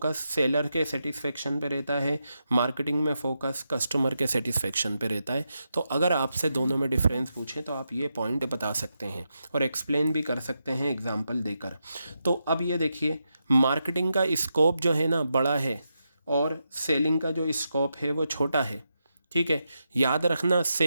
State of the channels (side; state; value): both; inverted; correlation -0.86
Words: सेलर के सेटिस्फेक्शन पे रहता है, मार्केटिंग में फोकस कस्टमर के सेटिस्फेक्शन पे रहता है। तो अगर आपसे दोनों में डिफरेंस पूछें तो आप ये पॉइंट बता सकते हैं और एक्सप्लेन भी कर सकते हैं एग्जांपल देकर। तो अब ये देखिए, मार्केटिंग का स्कोप जो है ना बड़ा है और सेलिंग का जो स्कोप है वो छोटा है, ठीक है। याद रखना,